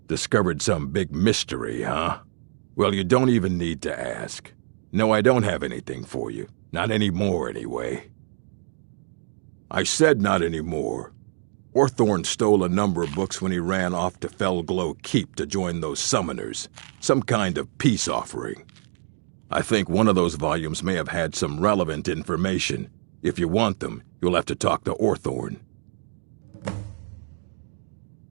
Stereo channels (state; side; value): silent; left; 62 dB below the other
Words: Discovered some big mystery, huh? Well, you don't even need to ask. No, I don't have anything for you. Not anymore, anyway. I said not anymore. Orthorn stole a number of books when he ran off to Felglow Keep to join those summoners. Some kind of peace offering. I think one of those volumes may have had some relevant information. If you want them, you'll have to talk to Orthorn.